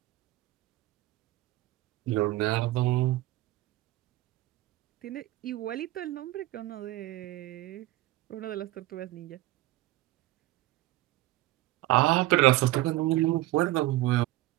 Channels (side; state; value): left; quieter; 17.6 dB